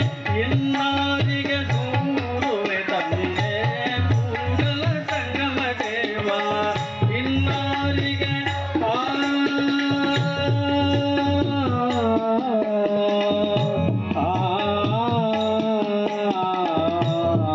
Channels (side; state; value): both; identical; correlation 1.00